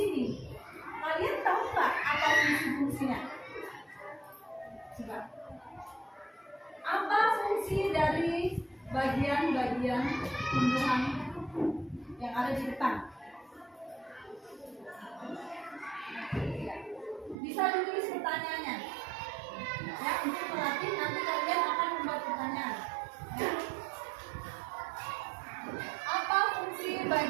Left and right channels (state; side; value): drops out; left; at 17.4 s